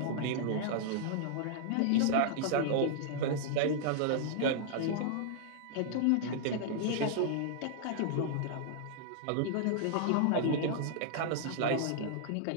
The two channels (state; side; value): different; both; correlation -0.01